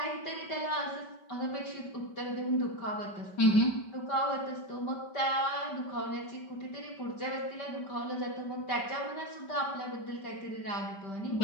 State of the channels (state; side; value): late; right; 5.2 ms